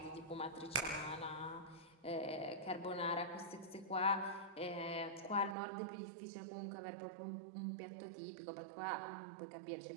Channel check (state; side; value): drops out; left; at 5.6 s